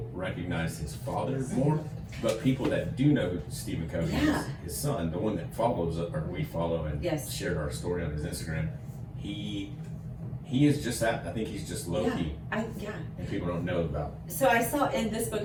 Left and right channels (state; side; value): identical; both; correlation 1.00